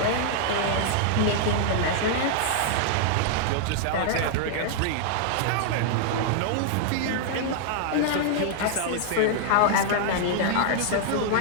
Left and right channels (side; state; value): both; different; correlation -0.01